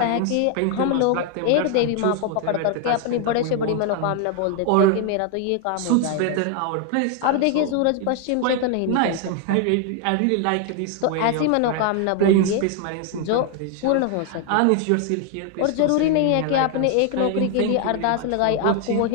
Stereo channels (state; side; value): different; both; correlation 0.00